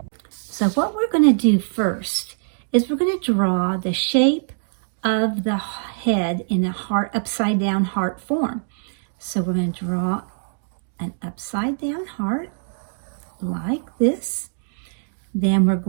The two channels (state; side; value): silent; left; digital silence